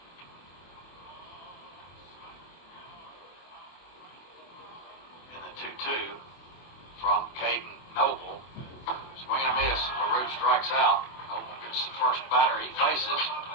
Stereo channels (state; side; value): late; right; 24 ms